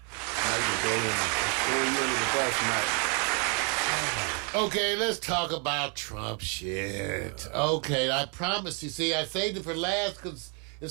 you can throw you under the bus, Mike. Okay, let's talk about Trump shit. Okay, I promise you. See, I saved it for last because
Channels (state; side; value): quieter; left; 36.9 dB